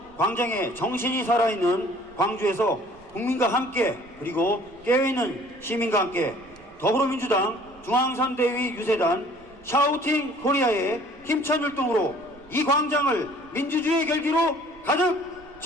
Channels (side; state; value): right; noise; rumble, 26 dB below the sound